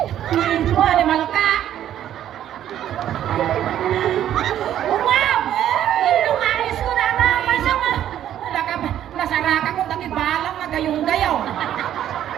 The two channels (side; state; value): left; quieter; 11.2 dB